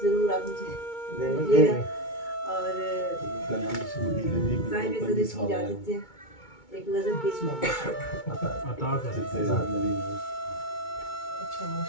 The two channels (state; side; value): late; right; 2.2 ms